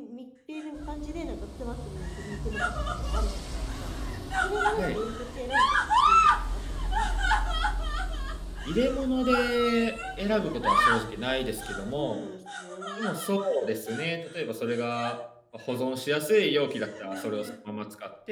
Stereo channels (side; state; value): both; identical; correlation 1.00